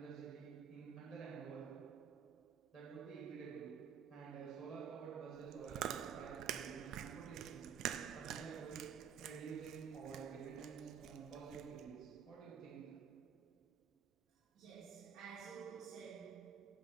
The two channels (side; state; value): left; quieter; 7.8 dB